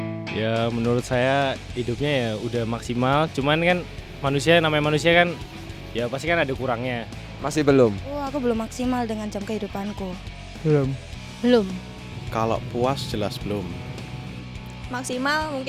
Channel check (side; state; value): both; identical; correlation 1.00